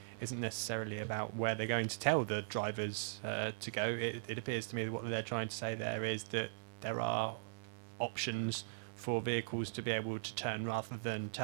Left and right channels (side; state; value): left; silent; 51 dB below the other